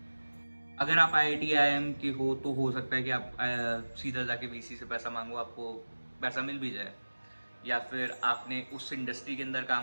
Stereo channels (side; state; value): both; inverted; correlation -1.00